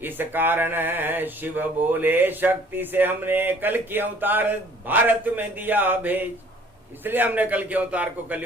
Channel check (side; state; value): both; normal; correlation 0.56